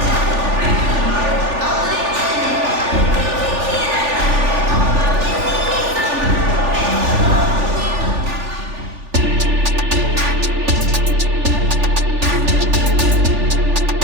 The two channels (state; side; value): late; left; 3.4 ms